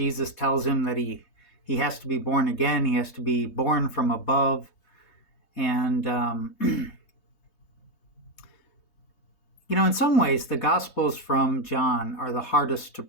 tells him that he has to be born again. He has to be born from above, and in some ways, the Gospels from John are the hardest to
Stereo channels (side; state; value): right; late; 3.2 ms